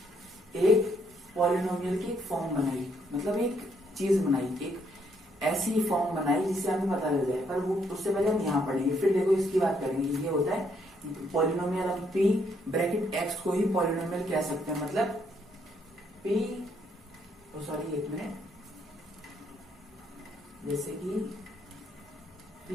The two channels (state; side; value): normal; both; correlation 0.72